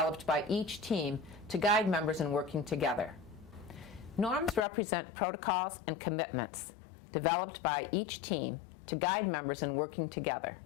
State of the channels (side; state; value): right; drops out; at 4.7 s